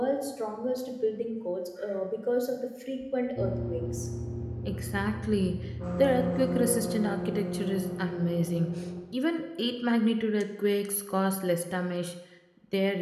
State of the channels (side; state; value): both; identical; correlation 1.00